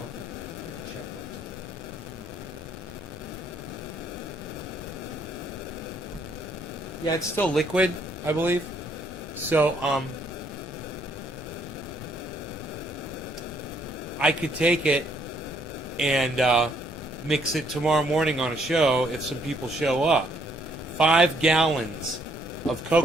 it. Check it. Yeah, it's still liquid, I believe. So, I could take it and mix it tomorrow morning on a show if some people show up. 5 gallons of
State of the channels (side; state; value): both; normal; correlation 0.68